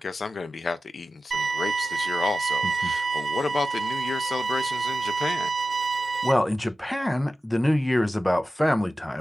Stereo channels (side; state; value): both; normal; correlation 0.93